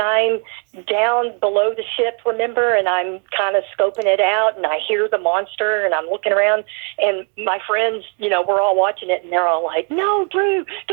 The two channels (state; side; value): quieter; left; 40.0 dB